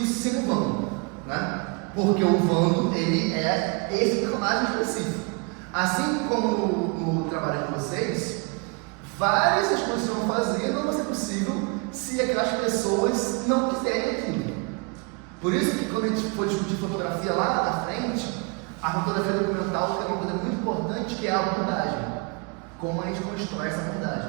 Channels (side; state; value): left; quieter; 32.4 dB